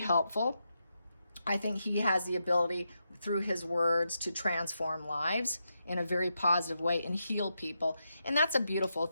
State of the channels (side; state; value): both; inverted; correlation -0.85